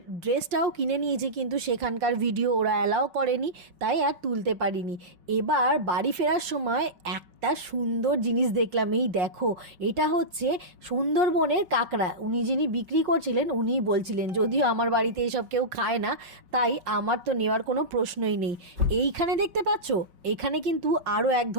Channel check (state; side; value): late; left; 5.3 ms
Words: ড্রেসটাও কিনে নিয়েছি, কিন্তু সেখানকার ভিডিও ওরা অ্যালাও করেনি, তাই আর তুলতে পারিনি। এবার বাড়ি ফেরার সময় একটা সুন্দর জিনিস দেখলাম। এই দেখো, এটা হচ্ছে সুন্দরবনের কাঁকড়া। উনি যিনি বিক্রি করছিলেন উনিই বলছিলেন, যদিও আমার বাড়িতে এসব কেউ খায় না, তাই আমার তো নেওয়ার কোনো প্রশ্নই নেই। এইখানে দেখতে পাচ্ছ, এখানে কিন্তু আরও এক